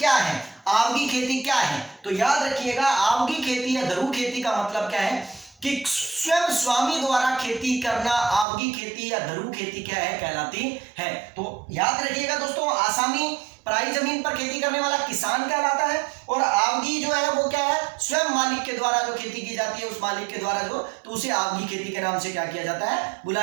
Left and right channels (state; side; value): drops out; left; at 8.5 s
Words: है, आवगी खेती क्या है, तो याद रखिएगा आवगी खेती या धरू खेती का मतलब क्या है कि स्वयं स्वामी द्वारा खेती करना आवगी खेती या धरू खेती क्या है, कहलाती है। तो याद रखिएगा दोस्तों, आसामी पराई जमीन पर खेती करने वाला किसान कहलाता है, और आवगी जो है वो क्या है, स्वयं मालिक के द्वारा जो खेती की जाती है, उस मालिक के द्वारा जो, तो उसे आवगी खेती के नाम से क्या किया जाता है,